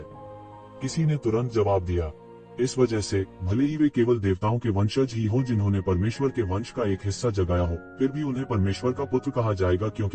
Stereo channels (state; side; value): identical; both; correlation 1.00